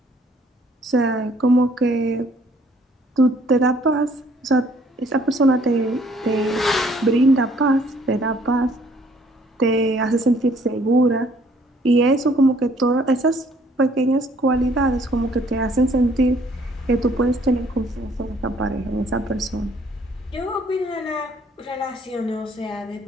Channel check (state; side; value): normal; both; correlation 0.61